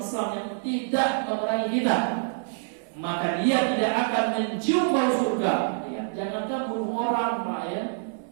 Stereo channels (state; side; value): silent; left; 61 dB below the other